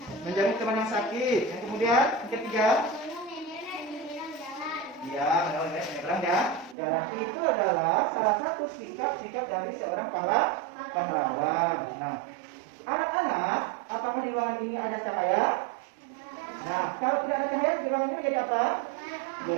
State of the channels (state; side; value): drops out; left; at 6.8 s